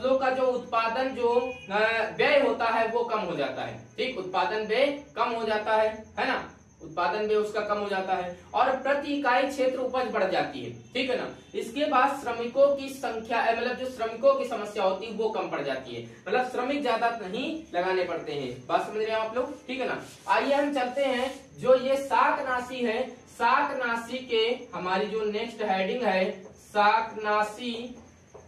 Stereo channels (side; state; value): both; identical; correlation 1.00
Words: का जो उत्पादन जो व्यय होता है वो कम हो जाता है। ठीक, उत्पादन व्यय कम हो जाता है ना। उत्पादन भी उसका कम हो जाता है और प्रति इकाई क्षेत्र उपज बढ़ जाती है, ठीक है ना। इसके बाद श्रमिकों की संख्या मतलब जो श्रमिकों की समस्या होती है वो कम पड़ जाती है, मतलब श्रमिक ज्यादा नहीं लगाने पड़ते हैं। बात समझ रहे हैं आप लोग, ठीक है ना। आइए हम चलते हैं जो ये शाकनाशी है, शाकनाशी के हमारी जो नेक्स्ट हेडिंग है